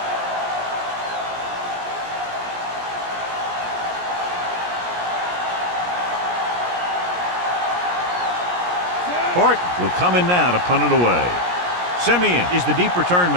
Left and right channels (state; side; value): late; left; 17 ms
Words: Horton will come in now to punt it away. Simeon is the deep return